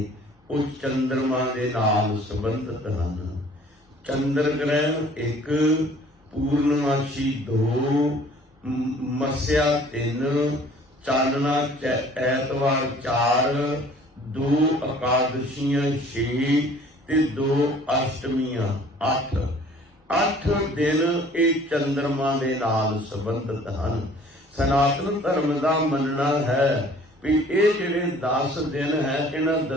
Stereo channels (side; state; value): both; normal; correlation 0.52